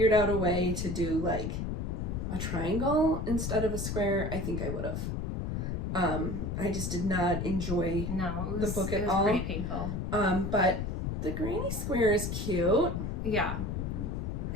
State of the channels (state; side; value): noise; left; rumble, 2 dB below the sound